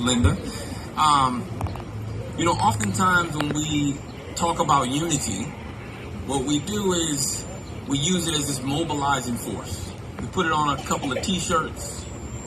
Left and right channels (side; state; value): both; identical; correlation 1.00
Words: Oftentimes when we talk about unity, what we do is we use it as this mobilizing force. We put it on a couple of T-shirts.